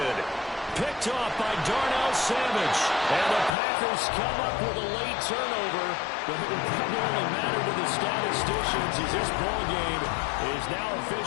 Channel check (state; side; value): drops out; right; at 3.5 s